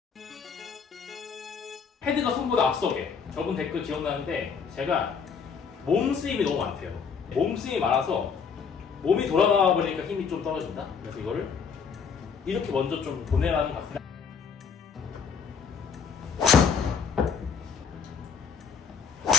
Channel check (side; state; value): right; quieter; 6.1 dB